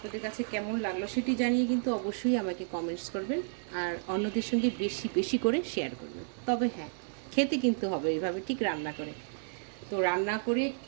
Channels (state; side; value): silent; left; digital silence